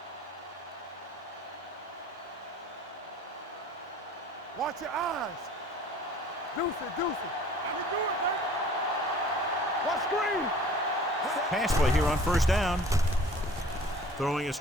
Watch your eyes. Deuce it. You do it, man. Watch screen. Pass play here on first down. Throwing a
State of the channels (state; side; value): normal; both; correlation 0.48